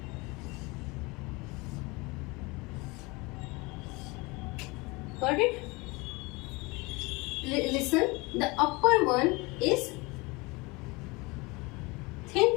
got it? Listen, the upper one is thin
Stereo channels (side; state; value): right; quieter; 25.2 dB